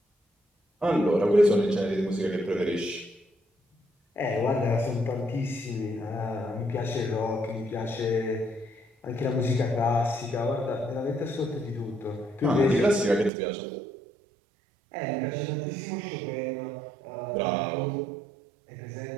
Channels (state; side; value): drops out; left; at 13.3 s